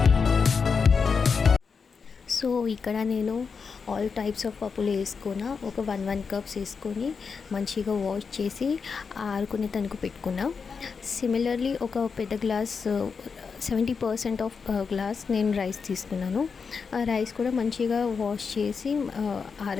So ఇక్కడ నేను ఆల్ టైప్స్ ఆఫ్ పప్పులు వేసుకున్నా. ఒక 1 కప్స్ వేసుకొని మంచిగా వాష్ చేసి ఆరుకునే తనకు పెట్టుకున్నా. సిమిలర్లీ ఒక పెద్ద గ్లాస్ 70% ఆఫ్ గ్లాస్ నేను రైస్ తీసుకున్నాను. ఆ రైస్ కూడా మంచిగా వాష్ చేసి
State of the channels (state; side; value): quieter; right; 5.5 dB